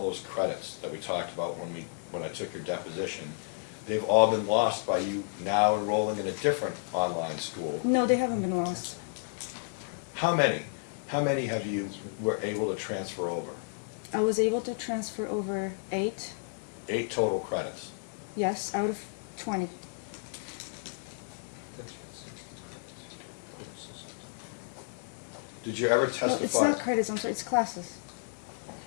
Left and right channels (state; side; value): silent; right; 56 dB below the other